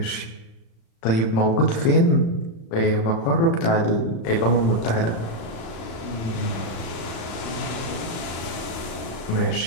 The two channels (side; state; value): right; late; 36 ms